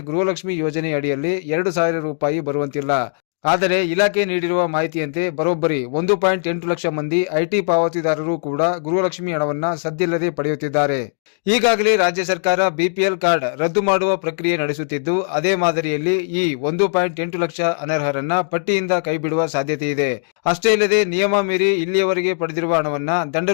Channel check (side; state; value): right; silent; digital silence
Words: ಗೃಹಲಕ್ಷ್ಮಿ ಯೋಜನೆ ಅಡಿಯಲ್ಲಿ 2,000 ರೂಪಾಯಿ ಬರುವಂತಿಲ್ಲ. ಆದರೆ ಇಲಾಖೆ ನೀಡಿರುವ ಮಾಹಿತಿಯಂತೆ ಬರೋಬ್ಬರಿ 1.8 ಲಕ್ಷ ಮಂದಿ ಐಟಿ ಪಾವತಿದಾರರು ಕೂಡ ಗೃಹಲಕ್ಷ್ಮಿ ಹಣವನ್ನ ಸದ್ದಿಲ್ಲದೆ ಪಡೆಯುತ್ತಿದ್ದಾರೆ. ಈಗಾಗಲೇ ರಾಜ್ಯ ಸರ್ಕಾರ ಬಿಪಿಎಲ್ ಕಾರ್ಡ್ ರದ್ದು ಮಾಡುವ ಪ್ರಕ್ರಿಯೆ ನಡೆಸುತ್ತಿದ್ದು, ಅದೇ ಮಾದರಿಯಲ್ಲಿ ಈ 1.8 ಲಕ್ಷ ಅನರ್ಹರನ್ನ ಪಟ್ಟಿಯಿಂದ ಕೈಬಿಡುವ ಸಾಧ್ಯತೆ ಇದೆ. ಅಷ್ಟೇ ಇಲ್ಲದೆ ನಿಯಮ ಮೀರಿ ಇಲ್ಲಿಯವರೆಗೆ ಪಡೆದಿರುವ ಹಣವನ್ನ ದಂಡ